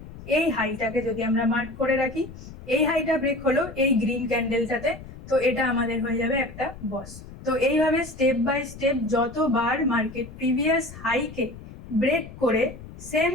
এই হাইটাকে যদি আমরা মার্ক করে রাখি, এই হাইটা ব্রেক হলো এই গ্রিন ক্যান্ডেলটাতে, তো এটা আমাদের হয়ে যাবে একটা বস। তো এইভাবে স্টেপ বাই স্টেপ যতবার মার্কেট প্রিভিয়াস হাইকে ব্রেক করে সেম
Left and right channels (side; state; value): left; noise; rumble, 15 dB below the sound